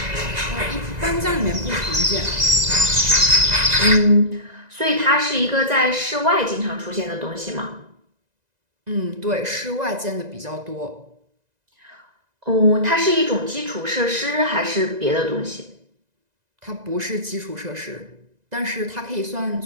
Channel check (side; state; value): left; late; 2.0 ms